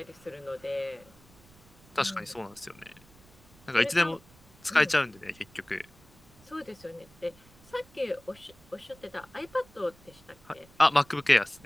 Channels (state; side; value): noise; right; rumble, 26 dB below the sound